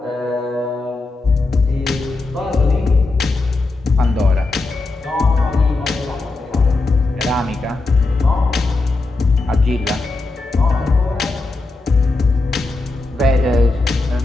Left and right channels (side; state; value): right; quieter; 3.3 dB